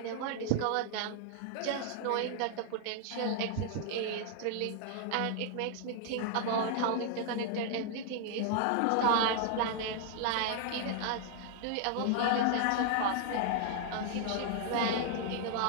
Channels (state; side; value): different; both; correlation 0.00